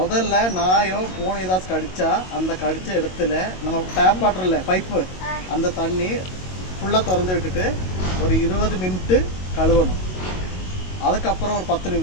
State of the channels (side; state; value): right; late; 22 ms